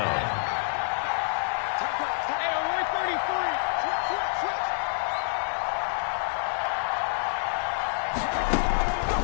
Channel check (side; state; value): right; silent; digital silence